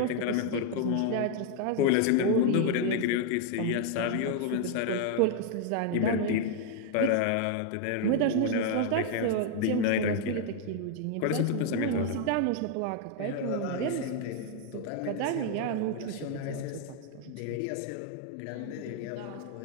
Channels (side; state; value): both; different; correlation 0.00